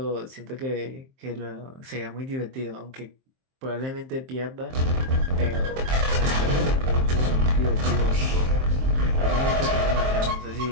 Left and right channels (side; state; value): left; late; 23 ms